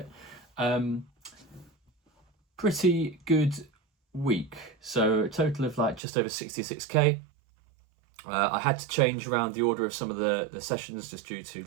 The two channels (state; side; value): drops out; left; at 6.0 s